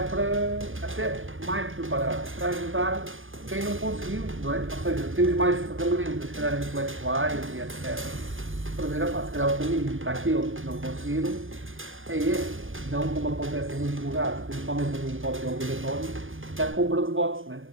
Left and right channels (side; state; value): left; late; 0.59 ms